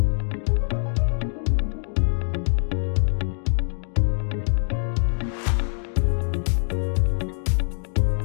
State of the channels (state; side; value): silent; right; digital silence